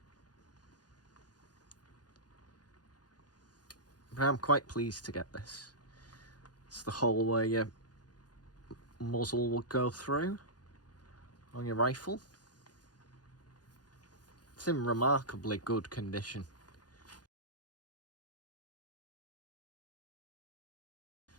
But I'm quite pleased to get this. It's the hole where your muzzle will go through on your rifle. It's in remarkably good condition.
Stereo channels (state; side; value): late; right; 0.69 ms